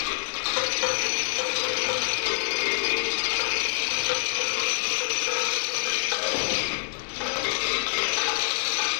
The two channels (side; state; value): right; silent; digital silence